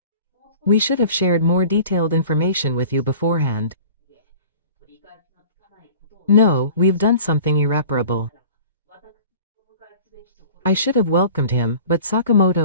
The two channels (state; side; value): inverted; both; correlation -0.43